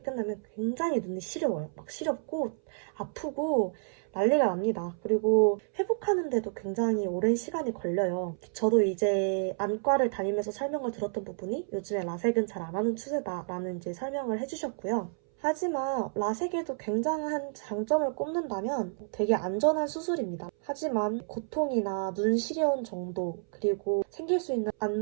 끝나면 굉장히 눈이 시려워요. 막 시렵고 아프고 난리가 납니다. 그리고 회복하는데도 굉장히 오랜 시간이 걸려요. 저도 이제 안과를 다니면서 설명을 들었던 부분이 요즘에 라섹은 잘 안 하는 추세다라는 이제 설명을 해주셨고요. 하지만 라섹에도 굉장한 장점을 꼽는다면 되게 안전한 수술입니다. 하지만 고통이나 눈 시려운 정도, 그리고 생길 수 있는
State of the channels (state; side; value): silent; left; 58 dB below the other